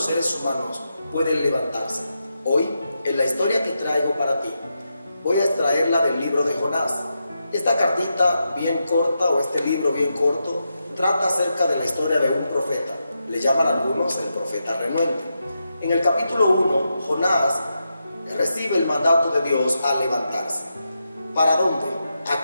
seres humanos pueden levantarse. Hoy, en la historia que traigo para ti, voy a extraerla del libro de Jonás. Esta cartita bien corta, o este libro bien corto, trata acerca de la historia de un profeta. Le llaman algunos el profeta renuente. En el capítulo 1, Jonás recibe el mandato de Dios a levantarse. ¿Para dónde? ¿A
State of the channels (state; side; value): inverted; both; correlation -0.86